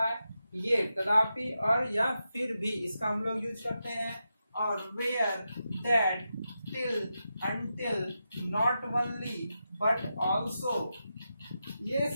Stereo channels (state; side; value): inverted; both; correlation -0.88